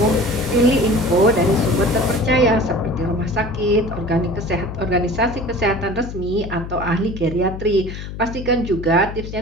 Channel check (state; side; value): noise; left; hum, 9 dB below the sound